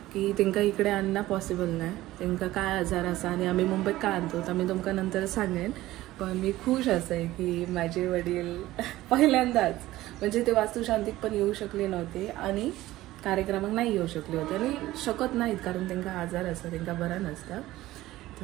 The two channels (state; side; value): quieter; left; 16.4 dB